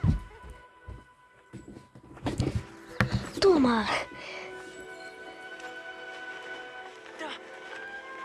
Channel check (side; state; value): both; identical; correlation 1.00